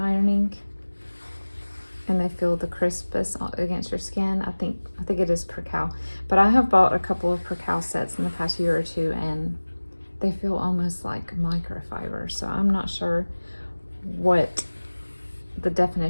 And they feel the crispness against your skin. I think it is percale. But I have bought a couple of percale sets in the past year or two, and they feel almost like microfiber. So I'm not sure what the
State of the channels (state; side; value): inverted; both; correlation -1.00